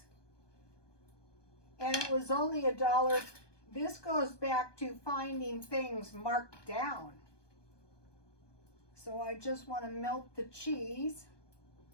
And it was only $1. This goes back to finding things marked down. So I just want to melt the cheese.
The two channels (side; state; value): right; late; 1.2 ms